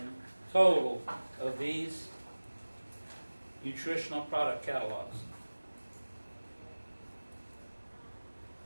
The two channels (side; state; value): both; inverted; correlation -1.00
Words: total of these nutritional product catalogs.